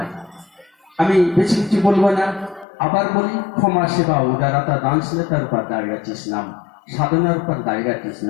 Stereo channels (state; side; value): drops out; right; at 2.7 s